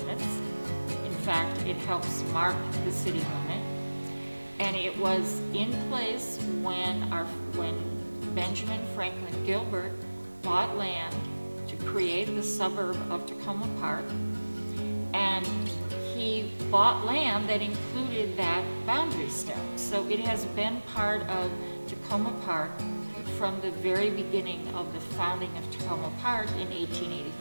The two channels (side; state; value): both; inverted; correlation -1.00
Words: In fact, it helps mark the city limit. And it was in place when Benjamin Franklin Gilbert bought land to create the suburb of Takoma Park. And he bought land that included that boundary stone. So it has been part of Takoma Park from the very beginning of the founding of Takoma Park in